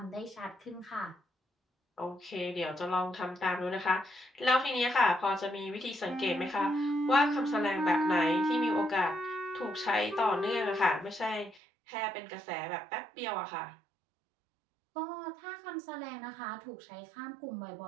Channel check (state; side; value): drops out; left; at 11.6 s